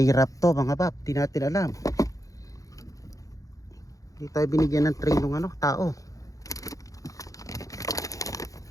wrap to mga Bap, di natin alam. Hindi tayo binigyan ng tray ng tao.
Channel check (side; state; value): right; late; 0.16 ms